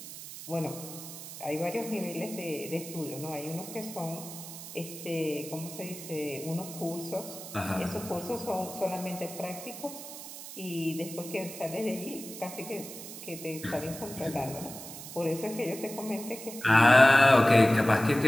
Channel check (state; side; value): noise; right; hiss, 12 dB below the sound